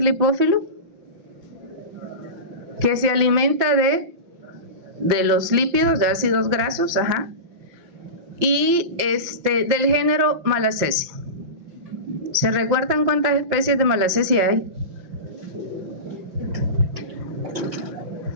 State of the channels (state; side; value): late; left; 5.8 ms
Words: lipófilo? Que se alimenta de los lípidos, de ácidos grasos, y del género Malassezia. ¿Se recuerdan cuántas especies de Malassezia hay?